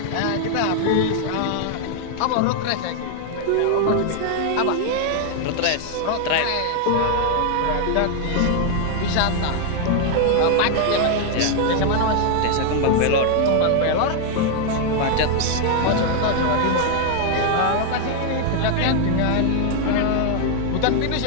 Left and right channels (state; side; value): different; both; correlation 0.00